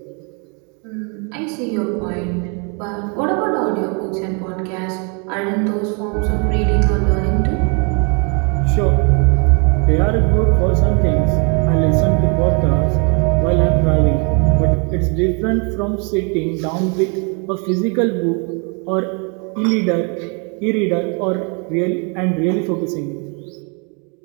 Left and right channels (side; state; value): left; quieter; 35.5 dB